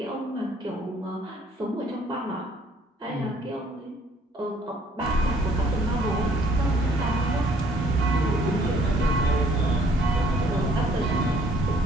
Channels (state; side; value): normal; both; correlation 0.61